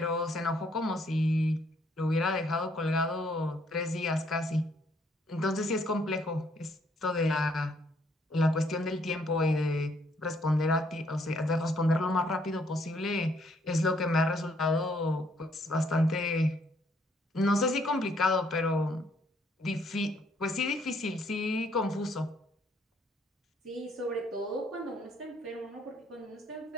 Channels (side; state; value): both; normal; correlation 0.68